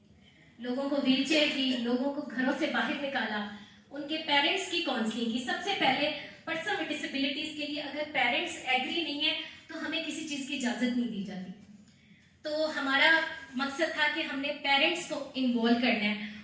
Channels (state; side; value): identical; both; correlation 1.00